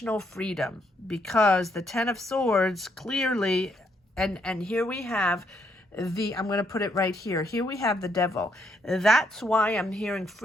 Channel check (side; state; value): both; normal; correlation 0.74